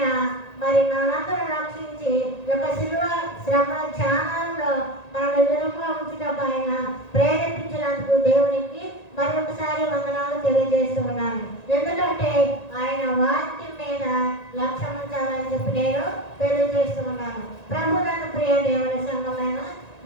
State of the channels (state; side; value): late; right; 1.9 ms